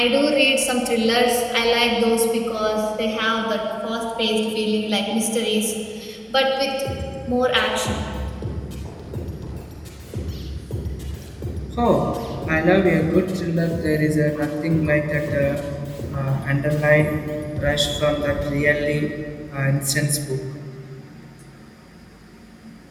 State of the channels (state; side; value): identical; both; correlation 1.00